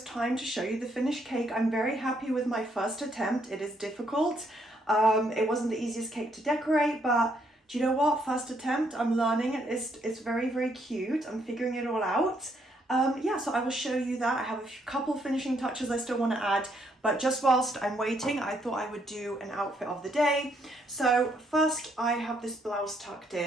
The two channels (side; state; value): both; normal; correlation 0.72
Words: time to show you the finished cake. I'm very happy with my first attempt. It is difficult. It wasn't the easiest cake to decorate, but do you know what? First attempt, I'm learning. It's very, very cute. I'm figuring it all out. Yeah, so I will show you that. I have a couple finishing touches I still want to add, but just whilst I'm waiting, I thought I would do an outfit of the day. So first I have this blouse tucked